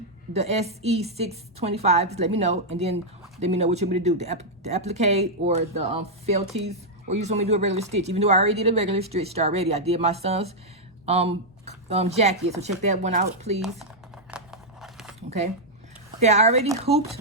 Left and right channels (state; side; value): normal; both; correlation -0.04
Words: the SE625, just let me know, and then let me know what you want me to do, the applique or the felties, or you just want me to do a regular stitch. Even though I already did a regular stitch already, I did my son's jacket, so check that one out, please. Okay. Okay, I already